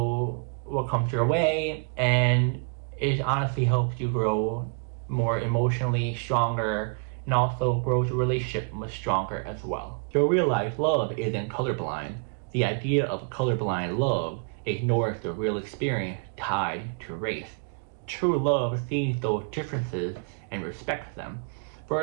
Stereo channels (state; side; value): quieter; left; 37.3 dB